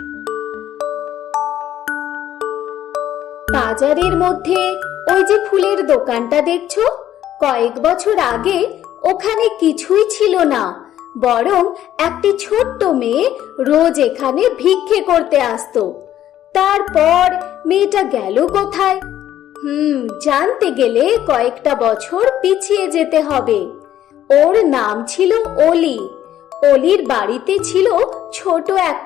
বাজারের মধ্যে ওই যে ফুলের দোকানটা দেখছো, কয়েক বছর আগে ওখানে কিছুই ছিল না, বরং একটি ছোট্ট মেয়ে রোজ এখানে ভিক্ষে করতে আসতো। তারপর মেয়েটা গেল কোথায়? জানতে গেলে কয়েকটা বছর পিছিয়ে যেতে হবে। ওর নাম ছিল অলি। অলির বাড়িতে ছিল ছোট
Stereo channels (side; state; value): right; quieter; 11.8 dB